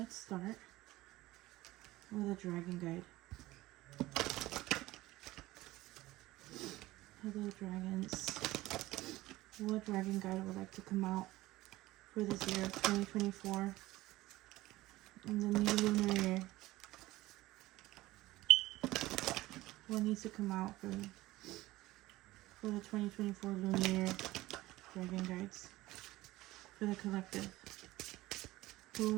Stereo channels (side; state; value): left; quieter; 18.0 dB